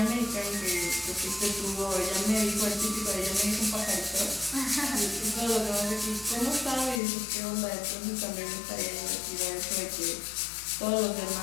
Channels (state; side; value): drops out; right; at 7.0 s